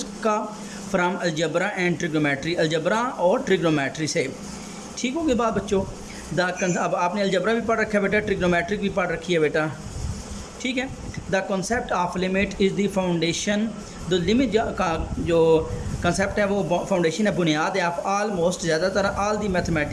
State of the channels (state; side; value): identical; both; correlation 1.00